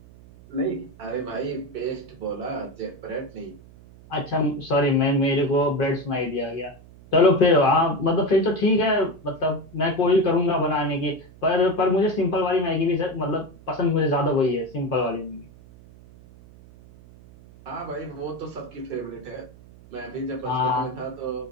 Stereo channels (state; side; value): noise; right; hum, 22 dB below the sound